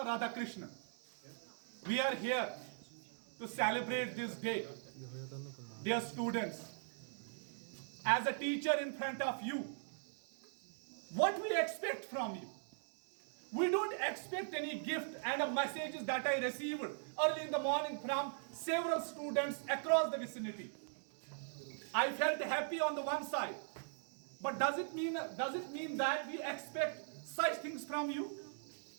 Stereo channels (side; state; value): left; silent; digital silence